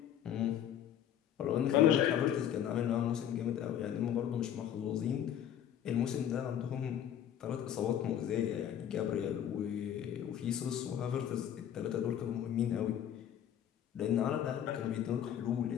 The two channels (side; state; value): right; quieter; 10.0 dB